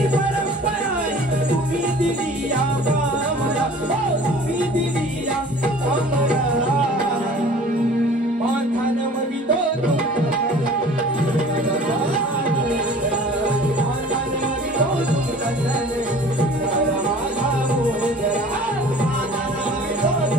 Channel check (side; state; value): both; normal; correlation 0.46